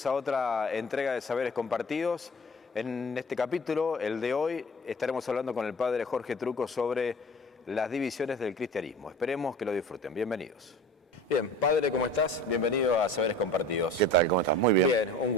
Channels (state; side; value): normal; both; correlation 0.42